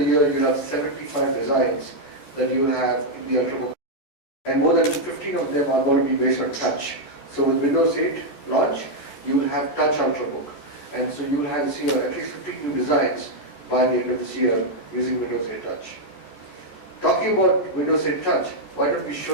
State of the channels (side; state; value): right; late; 14 ms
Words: year, you have 75 designs that you will have in the Ultrabook. And more than 15 of them are going to be based on touch. So with Windows 8 launch, you will have touch Ultrabook. And so you will have see at least 15 new designs by the end of this year using Windows 8 Touch. Talking about Windows 8 Touch, why don't we